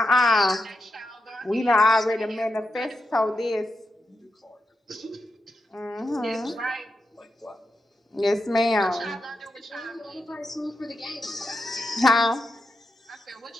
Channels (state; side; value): normal; both; correlation 0.87